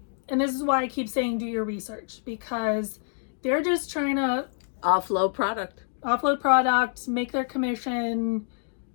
this is why I keep saying do your research, because they're just trying to offload product, make their commission,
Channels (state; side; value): silent; right; digital silence